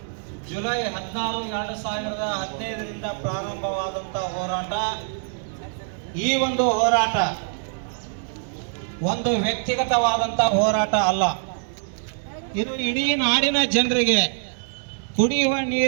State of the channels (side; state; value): left; silent; digital silence